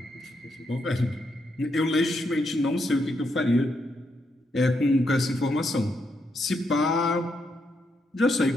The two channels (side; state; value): both; normal; correlation 0.80